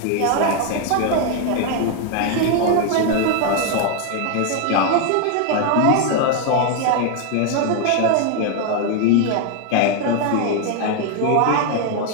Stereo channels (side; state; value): both; different; correlation 0.01